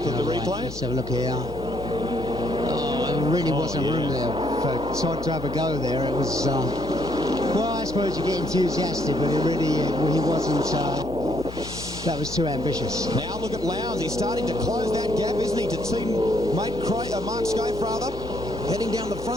at the replay. Let's have a look here. Oh, there really wasn't room there for Todd to have a go there. It was, well, I suppose you get enthusiastic, but it really, he wasn't, that was too ambitious. Now look at Lowndes. He's starting to close that gap, isn't he, to teammate Mark Scaife, rather. Heading down the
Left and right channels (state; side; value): noise; left; hum, 13 dB below the sound